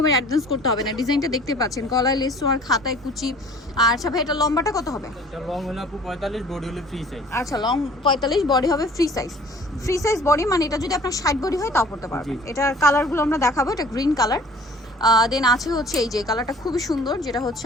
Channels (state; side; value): normal; both; correlation 0.49